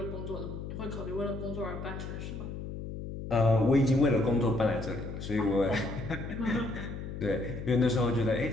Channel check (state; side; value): noise; left; hum, 8 dB below the sound